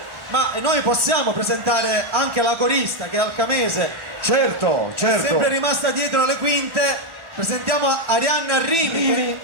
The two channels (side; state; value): left; late; 1.1 ms